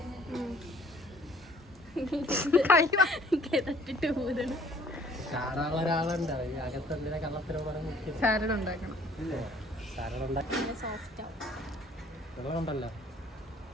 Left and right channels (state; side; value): normal; both; correlation 0.56